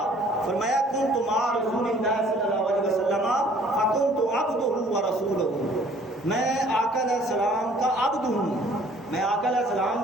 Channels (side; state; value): both; normal; correlation 0.56